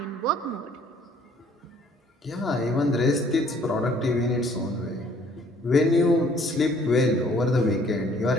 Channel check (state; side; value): normal; both; correlation 0.59